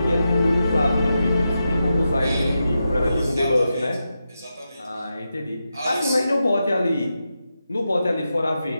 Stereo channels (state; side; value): inverted; both; correlation -0.88